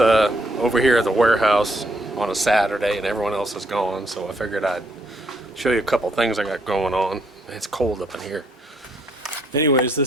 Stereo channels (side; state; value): both; normal; correlation 0.72